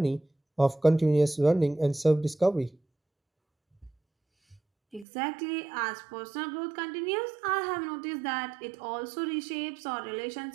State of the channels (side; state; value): left; drops out; at 5.1 s